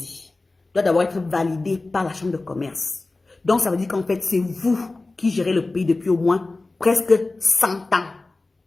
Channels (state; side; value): quieter; right; 3.2 dB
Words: doit d'abord être validé par la chambre de commerce. Donc ça veut dire qu'en fait c'est vous qui gérez le pays depuis au moins presque 100 ans.